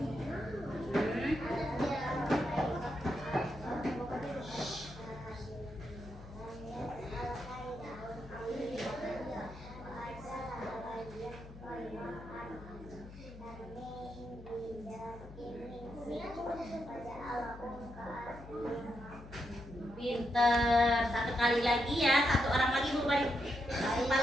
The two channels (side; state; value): left; noise; hum, 15 dB below the sound